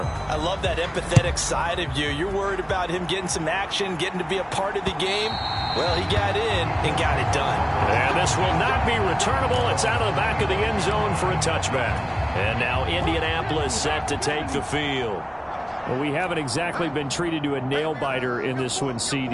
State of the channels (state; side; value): identical; both; correlation 1.00